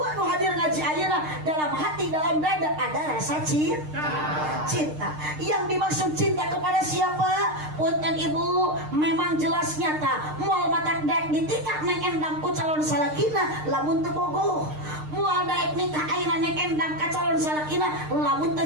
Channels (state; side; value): late; left; 6.6 ms